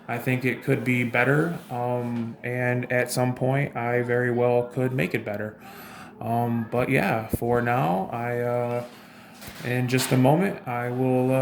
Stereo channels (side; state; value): both; identical; correlation 1.00